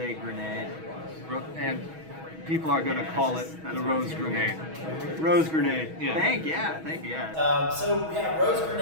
Grenade. And people are going to call it the Rose Grenade. Rose Grenade, yeah. Thank you, yeah. So yeah, Rose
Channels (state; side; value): late; left; 6.2 ms